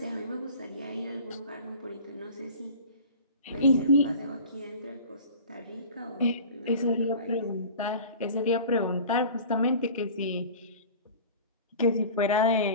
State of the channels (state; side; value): inverted; both; correlation -0.40